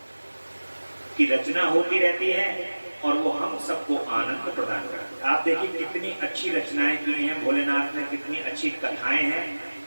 की रचना होती रहती है और वो हम सबको आनंद प्रदान करती है। आप देखिए कितनी अच्छी रचनाएं की हैं भोलेनाथ ने, कितनी अच्छी कथाएं हैं,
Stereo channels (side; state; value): both; inverted; correlation -1.00